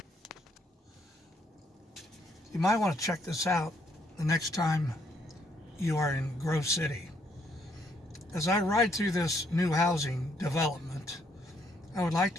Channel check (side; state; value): both; normal; correlation 0.71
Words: You might want to check this out the next time you are in Grove City. As I ride through this new housing development, I would like